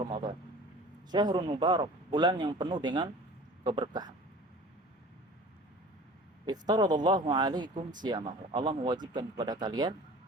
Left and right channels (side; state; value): both; normal; correlation 0.43